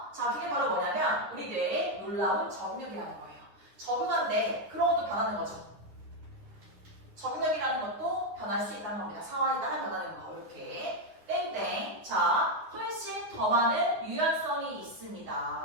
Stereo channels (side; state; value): left; late; 9.6 ms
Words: 자, 그게 바로 뭐냐면 우리 뇌에 놀라운 적응력이라는 거예요. 적응하는데 그런 것도 변하는 거죠. 적응력이라는 것도 변할 수 있다는 겁니다. 상황에 따라 변하는 거. 이렇게. 땡땡. 자, 훨씬 더 많은 유연성이